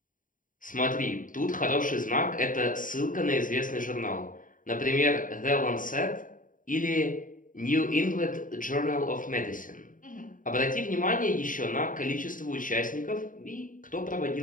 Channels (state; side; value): late; right; 0.39 ms